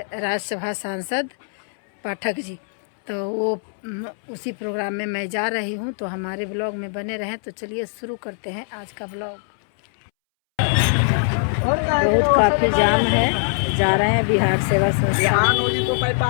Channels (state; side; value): silent; right; 64 dB below the other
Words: राज्यसभा सांसद पाठक जी, तो वो उसी प्रोग्राम में मैं जा रही हूँ। तो हमारे ब्लॉग में बने रहें। तो चलिए शुरू करते हैं आज का ब्लॉग। बहुत काफ़ी जाम है, जा रहे हैं बिहार सेवा संस्थान,